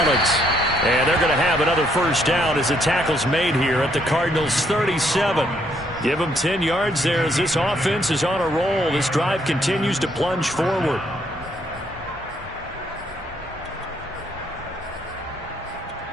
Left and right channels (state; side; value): normal; both; correlation 0.71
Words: And they're going to have another first down as the tackle's made here at the Cardinals' 37. Give them 10 yards there as this offense is on a roll. This drive continues to plunge forward.